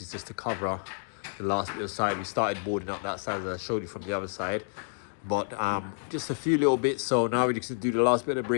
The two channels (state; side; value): silent; right; digital silence